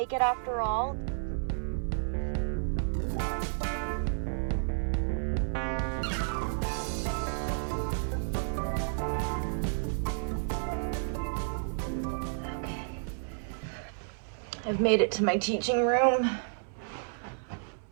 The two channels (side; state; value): left; silent; 57 dB below the other